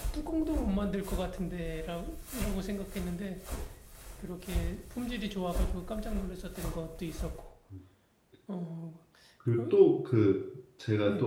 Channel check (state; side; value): identical; both; correlation 1.00